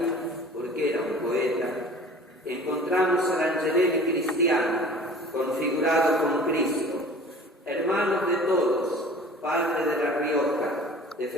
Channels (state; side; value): normal; both; correlation 0.45